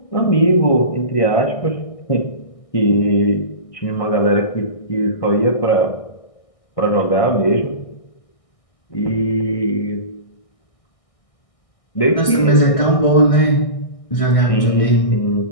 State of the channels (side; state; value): right; late; 1.6 ms